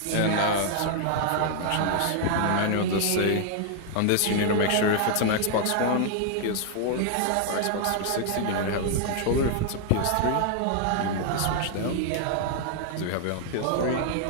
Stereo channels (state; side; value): different; both; correlation 0.00